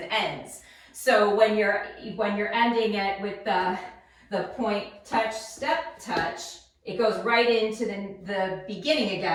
ends. So when you're ending it with the point, touch, step, touch, it goes right into the beginning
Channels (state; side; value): identical; both; correlation 1.00